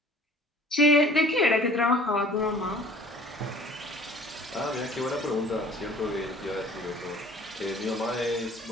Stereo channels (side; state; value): both; normal; correlation 0.50